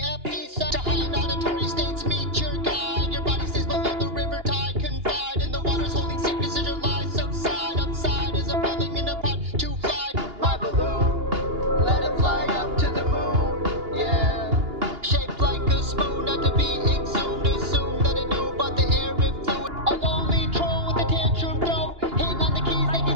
peace. To high auditory states, meet your guide. Your body stays below the river tide. Confide in the waters, holding secrets as your lies subside. Upside is a falling in a pot to fly. My balloon, let it fly up to the moon. Yeah, shaped like a spoon, not to be exhumed. Assume that it knew about the air it flew. A lonely troll with a tantrum throw. Hitting on the keys like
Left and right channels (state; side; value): late; left; 2.8 ms